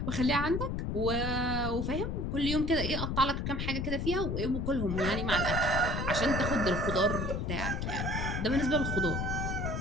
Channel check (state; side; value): noise; left; rumble, 1 dB below the sound